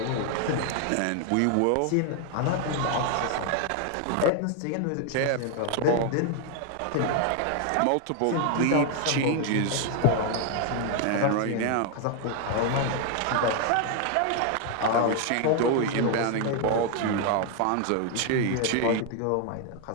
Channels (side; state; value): both; different; correlation 0.00